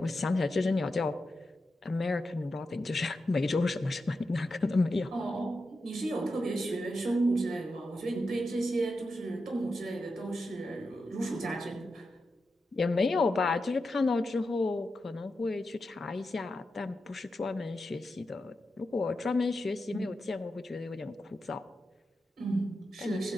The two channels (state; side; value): normal; both; correlation 0.89